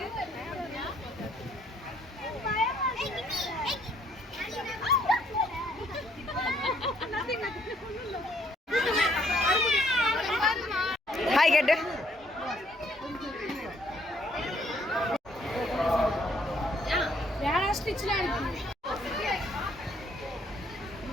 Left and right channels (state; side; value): normal; both; correlation 0.66